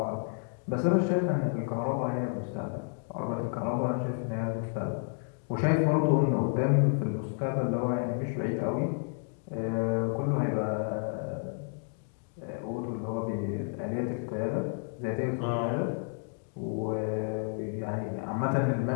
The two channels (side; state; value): right; silent; 57 dB below the other